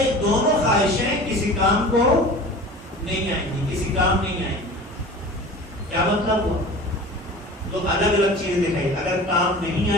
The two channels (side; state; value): both; normal; correlation 0.39